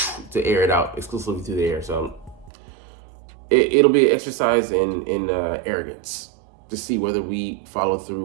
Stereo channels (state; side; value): drops out; left; at 2.5 s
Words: to air it out exclusively through the air. So it'll be an exercise in arrogance to see whether we follow